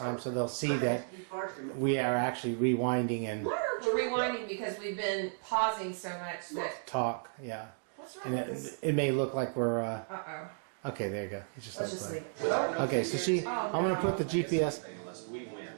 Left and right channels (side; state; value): left; silent; digital silence